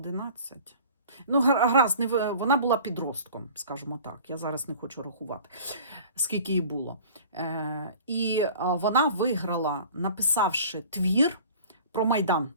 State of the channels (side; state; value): both; inverted; correlation -0.44